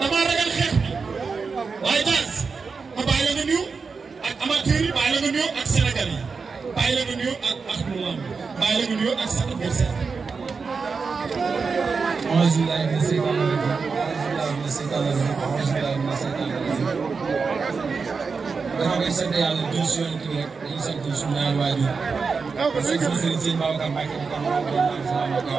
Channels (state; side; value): quieter; left; 4.9 dB